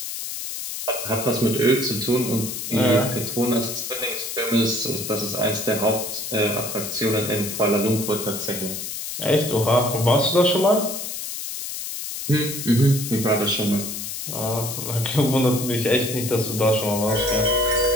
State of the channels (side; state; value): left; noise; hiss, 6 dB below the sound